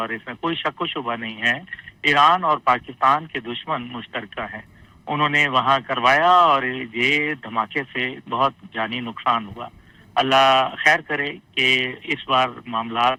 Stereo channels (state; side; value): identical; both; correlation 1.00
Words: इसमें कोई शक व शुबा नहीं है, ईरान और पाकिस्तान के दुश्मन मुश्तरका हैं, उन्होंने वहाँ करवाया और ये धमाके से बहुत जानी नुकसान हुआ। अल्लाह खैर करे कि इस बार मामलात